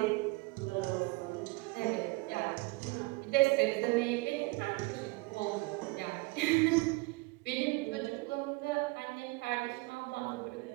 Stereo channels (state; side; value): quieter; left; 24.3 dB